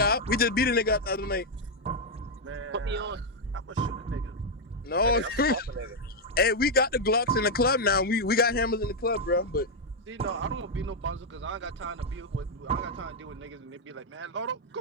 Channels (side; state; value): both; normal; correlation 0.00